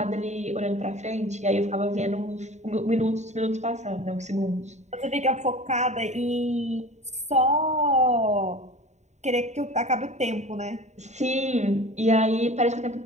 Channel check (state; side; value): late; left; 0.33 ms